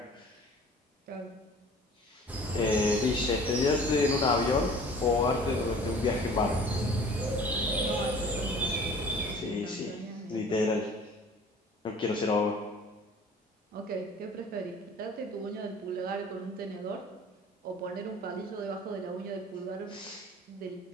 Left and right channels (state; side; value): normal; both; correlation 0.47